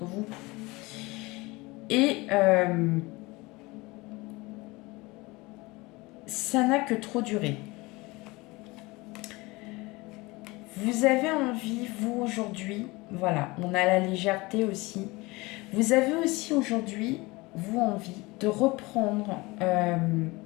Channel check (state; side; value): quieter; right; 23.0 dB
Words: vous. Et ça n'a que trop duré. Vous avez envie, vous, aujourd'hui, voilà, on a la légèreté aussi. Vous avez aussi aujourd'hui, vous, envie de reprendre